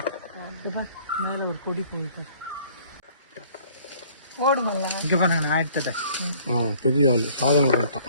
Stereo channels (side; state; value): both; inverted; correlation -0.56